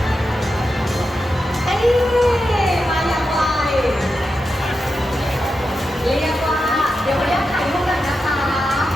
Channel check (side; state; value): both; normal; correlation 0.89